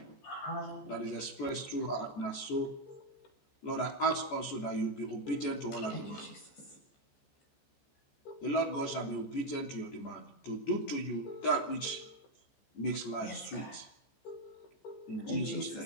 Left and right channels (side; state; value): right; late; 14 ms